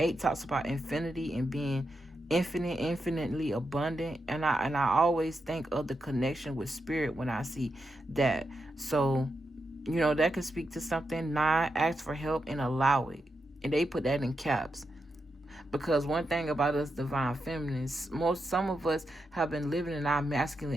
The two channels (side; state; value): both; normal; correlation 0.86